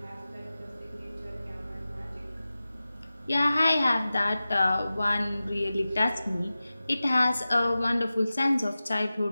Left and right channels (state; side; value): inverted; both; correlation -0.96